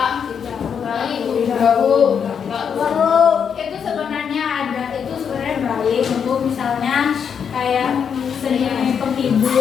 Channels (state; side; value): quieter; right; 7.2 dB